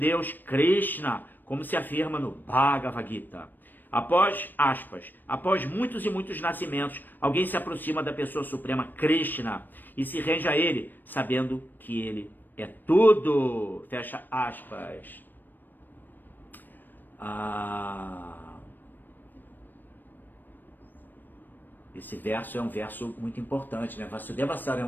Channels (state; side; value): late; right; 0.091 ms